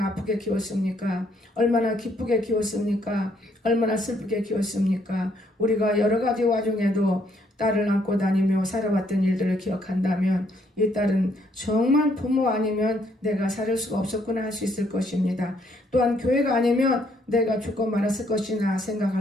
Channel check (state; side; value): normal; both; correlation 0.70